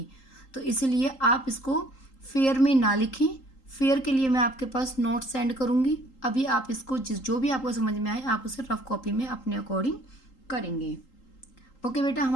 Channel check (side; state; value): right; late; 3.8 ms